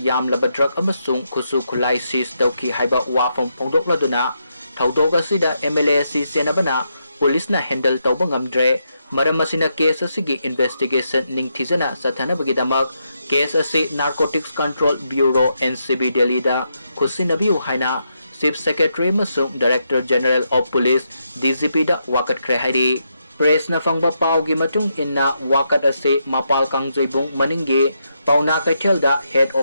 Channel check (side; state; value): both; inverted; correlation -0.81